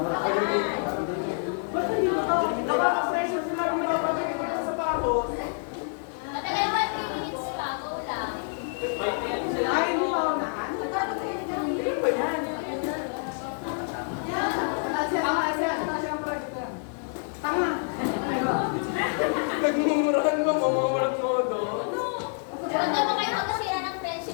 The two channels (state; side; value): silent; right; 58 dB below the other